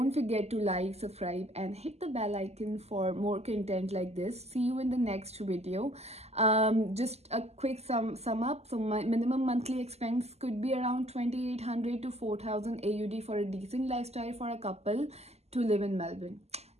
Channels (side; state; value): left; late; 0.30 ms